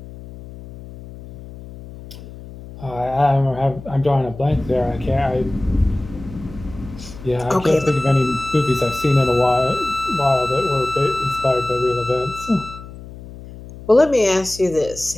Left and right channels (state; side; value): noise; left; hum, 15 dB below the sound